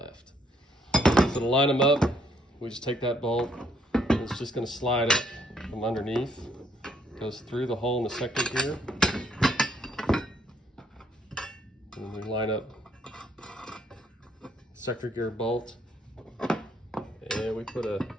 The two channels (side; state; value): both; normal; correlation 0.69